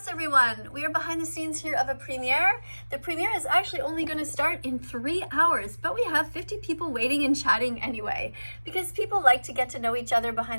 everyone. We are behind the scenes here of a premiere. The premiere is actually only going to start in 3 hours, but we have 50 people waiting and chatting anyway, because people like to get to know each other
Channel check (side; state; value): both; inverted; correlation -1.00